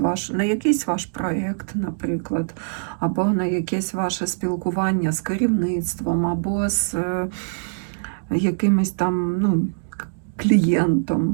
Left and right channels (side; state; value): left; silent; digital silence